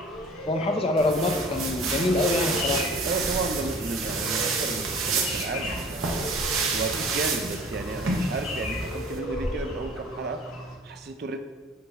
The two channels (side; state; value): both; normal; correlation 0.46